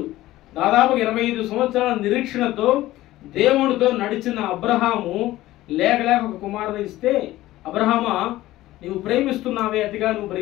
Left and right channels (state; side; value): quieter; right; 16.1 dB